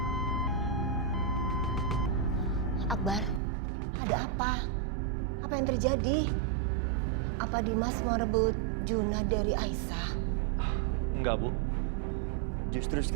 Akbar, ada apa? Apa yang terjadi? Apa Dimas mau rebut Junah dari Aisyah? Enggak, Bu. Justru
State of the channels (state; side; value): drops out; left; at 3.4 s